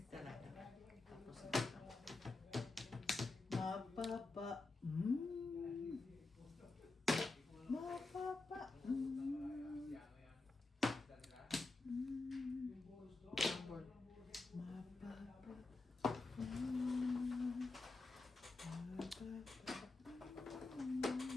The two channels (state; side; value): quieter; right; 3.3 dB